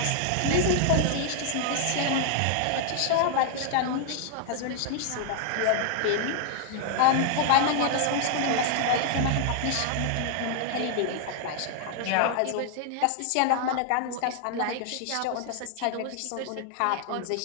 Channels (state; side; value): different; both; correlation 0.00